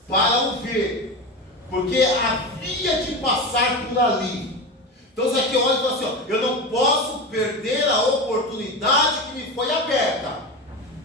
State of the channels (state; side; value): normal; both; correlation 0.23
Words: para o ver, porque havia de passar por ali. Então Zaqueu olha e fala assim, ó, eu não posso perder a oportunidade que me foi aberta.